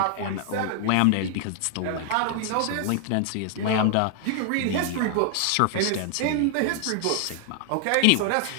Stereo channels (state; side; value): different; both; correlation 0.00